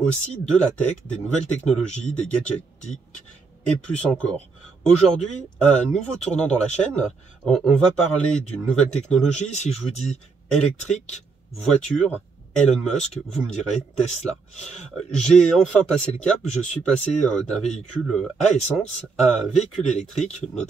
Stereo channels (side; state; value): left; quieter; 4.7 dB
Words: de la tech, des nouvelles technologies, des gadgets geeks et plus encore. Aujourd'hui, un nouveau tournant dans la chaîne, on va parler d'une nouvelle technologie. Si je vous dis électrique, voiture, Elon Musk, vous me direz Tesla. J'ai enfin passé le cap, je suis passé d'un véhicule à essence à un véhicule électrique,